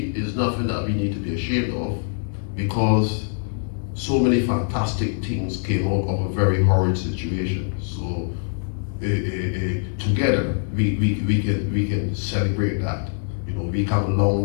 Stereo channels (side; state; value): right; silent; 62 dB below the other